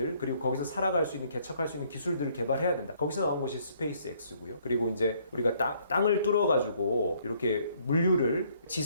그리고 거기서 살아갈 수 있는 개척할 수 있는 기술들을 개발해야 된다. 거기서 나온 것이 스페이스 X고요. 그리고 이제 우리가 땅을 뚫어 가지고 이렇게 물류를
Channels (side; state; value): both; inverted; correlation -0.65